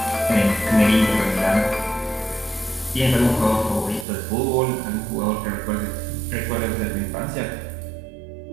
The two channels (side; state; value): left; drops out; at 4.0 s